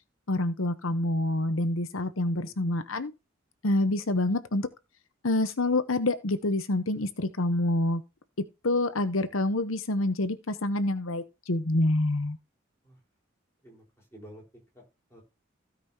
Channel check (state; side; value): normal; both; correlation 0.44